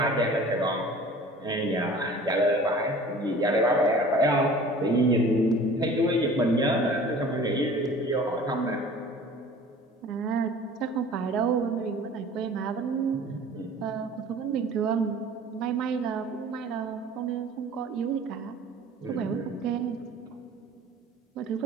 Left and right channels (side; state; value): both; normal; correlation 0.45